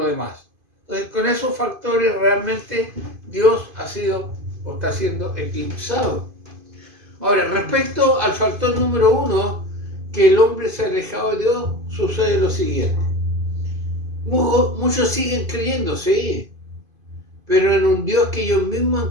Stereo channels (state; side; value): late; left; 2.5 ms